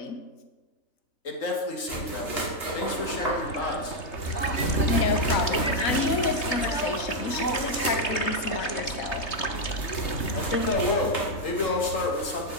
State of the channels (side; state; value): right; late; 3.2 ms